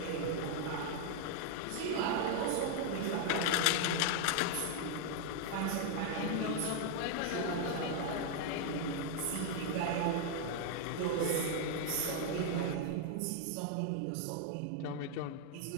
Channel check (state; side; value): different; both; correlation 0.00